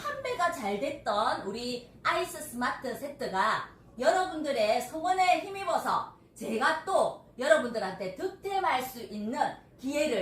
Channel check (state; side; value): identical; both; correlation 1.00